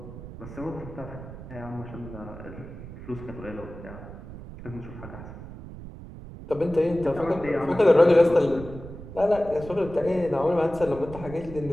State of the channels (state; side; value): noise; right; rumble, 13 dB below the sound